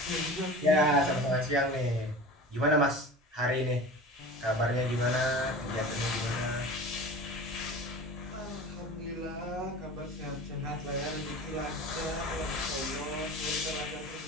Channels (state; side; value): normal; both; correlation 0.36